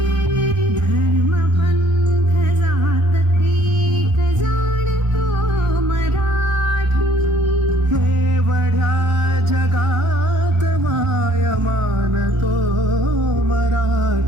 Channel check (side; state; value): left; late; 1.4 ms